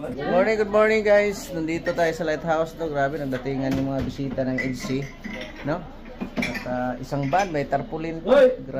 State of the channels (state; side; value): identical; both; correlation 1.00